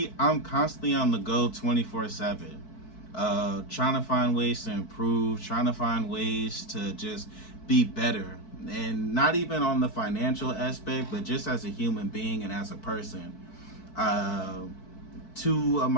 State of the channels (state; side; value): late; right; 4.6 ms